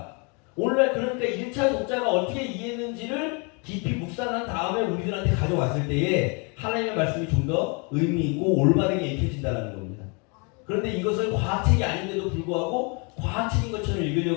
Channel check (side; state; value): right; quieter; 33.3 dB